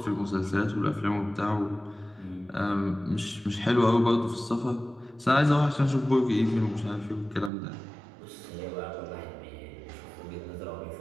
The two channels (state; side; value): drops out; left; at 7.5 s